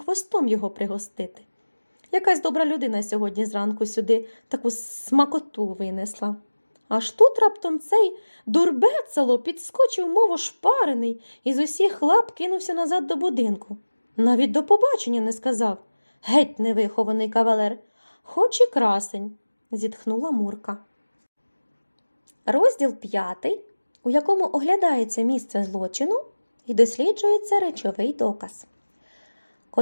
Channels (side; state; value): both; inverted; correlation -1.00